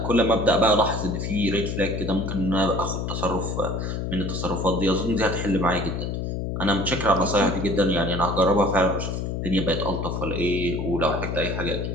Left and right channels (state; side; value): noise; left; hum, 3 dB below the sound